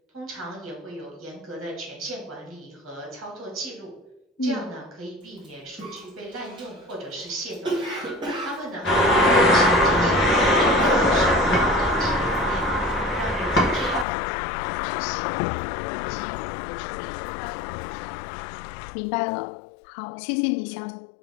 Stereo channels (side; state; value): right; drops out; at 14.1 s